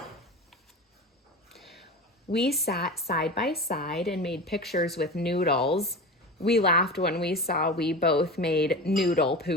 We sat side by side and made pictures with noodles. We laughed when we saw we both made noodle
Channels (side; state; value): both; normal; correlation 0.29